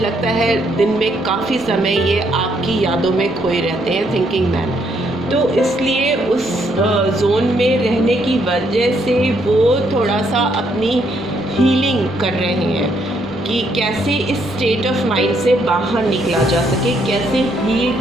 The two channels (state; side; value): normal; both; correlation 0.72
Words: है दिन में काफ़ी समय ये आपकी यादों में खोए रहते हैं, थिंकिंग मैन। तो इसलिए उस जोन में रहने की वजह से वो थोड़ा सा अपनी हीलिंग कर रहे हैं कि कैसे इस स्टेट ऑफ माइंड से बाहर निकला जा सके, कैसे हील